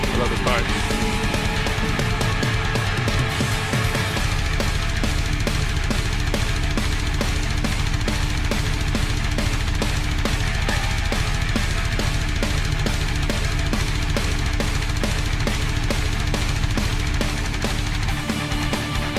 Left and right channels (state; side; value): identical; both; correlation 1.00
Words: Love this part.